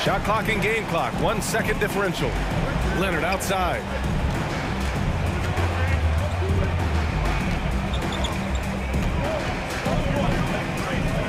Shot clock and game clock. 1 second differential. Leonard outside.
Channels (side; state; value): both; identical; correlation 1.00